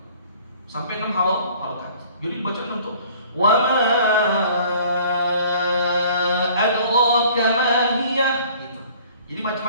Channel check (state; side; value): inverted; both; correlation -0.53